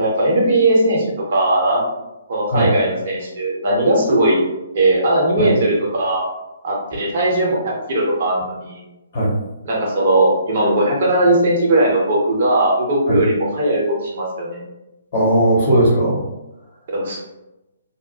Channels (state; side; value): inverted; both; correlation -0.64